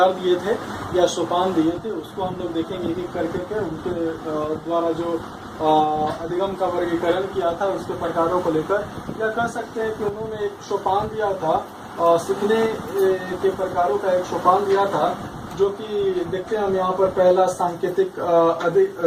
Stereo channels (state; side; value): identical; both; correlation 1.00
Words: दिए थे या सोपान दिए थे उसको हम लोग देखेंगे एक एक करके उनके द्वारा जो अधिगम का वर्गीकरण किया था उसके प्रकारों को लेकर, या कह सकते हैं कि उन्होंने एक सोपान दिया था, सीखने के प्रकारों का एक सोपान दिया था, जो कि देखते हैं हम यहाँ पर पहला सांकेतिक